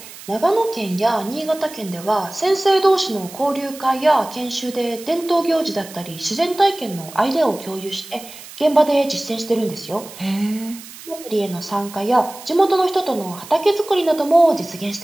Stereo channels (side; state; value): right; noise; hiss, 16 dB below the sound